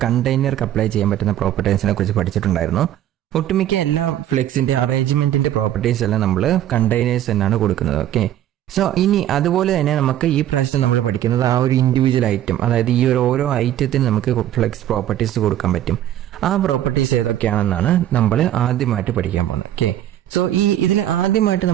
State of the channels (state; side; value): quieter; left; 12.0 dB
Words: കണ്ടെയ്നർക്ക് അപ്ലൈ ചെയ്യാൻ പറ്റുന്ന പ്രോപ്പർട്ടീസിനെ കുറിച്ച് പഠിച്ചിട്ടുണ്ടായിരുന്നു. ഒട്ടുമിക്ക എല്ലാ ഫ്ലെക്സിന്റെ അറേഞ്ച്മെന്റിന്റെ പ്രോപ്പർട്ടീസ് എല്ലാം നമ്മൾ കണ്ടെയ്നേഴ്സ് എന്നാണ് കൊടുക്കുന്നത്. ഓക്കെ, സോ ഇനി അതുപോലെ തന്നെ നമുക്ക് ഈ പ്രാവശ്യം നമ്മൾ പഠിക്കുന്നത് ആ ഒരു ഇൻഡിവിജ്വൽ ഐറ്റം, അതായത് ഈ ഒരു ഓരോ ഐറ്റത്തിന് നമുക്ക് ഫ്ലെക്സ് പ്രോപ്പർട്ടീസ് കൊടുക്കാൻ പറ്റും. ആ പ്രോപ്പർട്ടീസ് ഏതൊക്കെയാണെന്നാണ് നമ്മൾ ആദ്യമായിട്ട് പഠിക്കാൻ പോകുന്നത്. ഓക്കെ, സോ ഇതിൽ ആദ്യമായിട്ട്